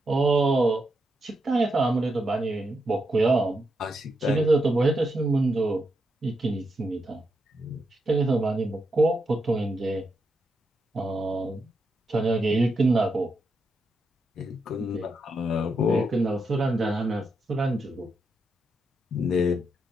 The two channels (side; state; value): both; normal; correlation 0.83